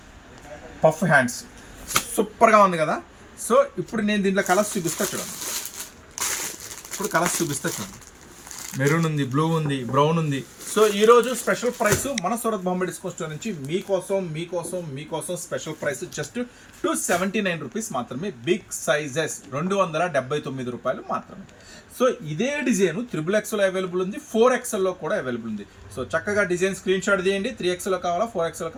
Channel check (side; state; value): both; identical; correlation 1.00